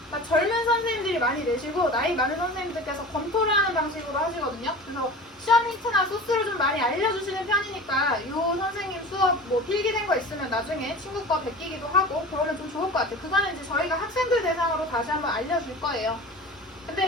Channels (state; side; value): normal; both; correlation 0.36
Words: 그러니까 젊은 선생님들이 많이 내시고 나이 많은 선생님들께서 검토를 하는 방식으로 하시거든요. 그래서 시험 힌트나 소스를 좀 많이 알려주시는 편이니까 이 선생님 수업 뭐 필기된 거 있으면 나중에 친구 거 베끼기도 하고 그러면 좀 좋을 것 같아요. 그거는 이제 저희가 학생들 대상으로 다시 한번 알려줄 거예요.